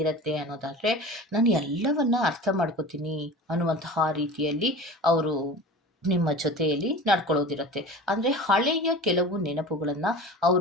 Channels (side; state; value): both; normal; correlation 0.35